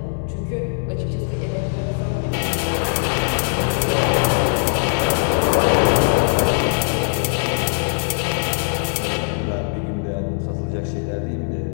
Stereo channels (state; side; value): silent; right; digital silence